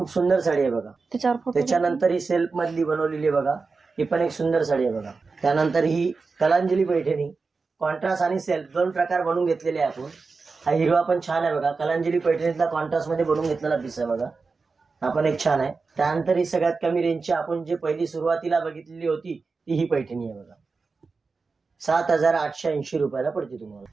सुंदर साडी आहे बघा। त्याच्यानंतर ही सेल्फ मधली बनवलेली आहे बघा, ही पण एक सुंदर साडी आहे बघा। त्यानंतर ही कलांजली पैठणी, कॉन्ट्रास्ट आणि सेल्फ दोन प्रकार बनवून घेतलेले आहे आपण। हा हिरवा पण छान आहे बघा, कलांजली पैठणीतला कॉन्ट्रास्ट मध्ये बनवून घेतलेला पीस आहे बघा, हा पण एक छान आहे। त्यानंतर ही सगळ्यात कमी रेंजची आपण जे पहिली सुरुवातीला बघितलेली होती ती ही पैठणी आहे बघा, 7,880 रुपयाला पडते तुम्हाला।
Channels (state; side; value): quieter; left; 4.4 dB